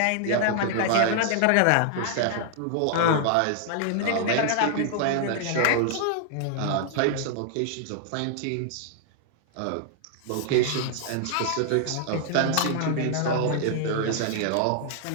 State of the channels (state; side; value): different; both; correlation 0.00